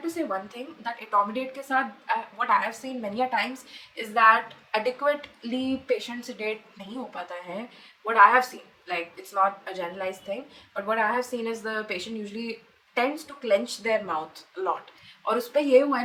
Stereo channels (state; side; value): identical; both; correlation 1.00